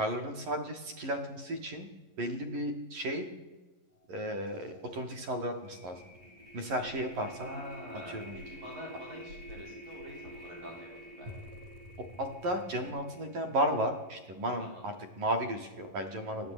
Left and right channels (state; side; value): late; left; 11 ms